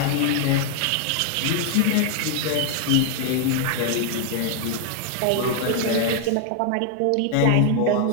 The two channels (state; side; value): different; both; correlation 0.00